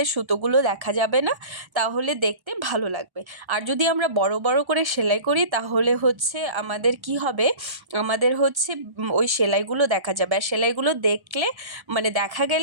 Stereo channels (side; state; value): left; late; 1.1 ms